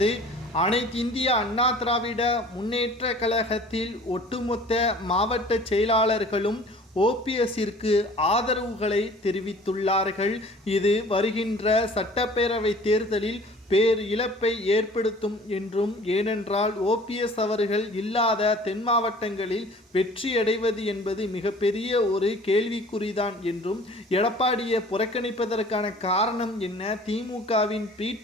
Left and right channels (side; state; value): both; normal; correlation 0.48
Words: அனைத்து இந்திய அண்ணா திராவிட முன்னேற்ற கழகத்தில் ஒட்டுமொத்த மாவட்ட செயலாளர்களும் ஓபிஎஸ்ஸிற்கு ஆதரவுகளை தெரிவித்துள்ளார்கள். இது வருகின்ற சட்டப்பேரவை தேர்தலில் பேர் இழப்பை ஏற்படுத்தும் என்றும், ஏனென்றால் ஓபிஎஸ் அவர்கள் இல்லாத தென் மாவட்டங்களில் வெற்றியடைவது என்பது மிகப்பெரிய ஒரு கேள்விக்குறிதான் என்றும், எடப்பாடியை புறக்கணிப்பதற்கான காரணம் என்ன, திமுகவின் பி